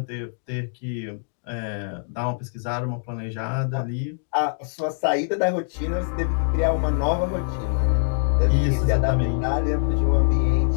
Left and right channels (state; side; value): silent; right; digital silence